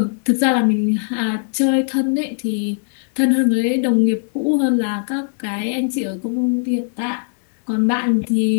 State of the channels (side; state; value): right; silent; 66 dB below the other